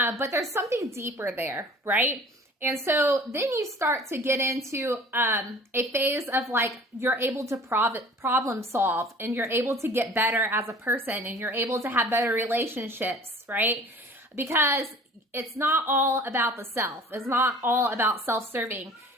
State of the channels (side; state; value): both; normal; correlation 0.47